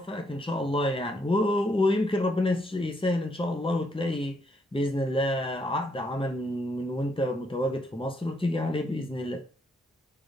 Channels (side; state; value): both; normal; correlation 0.74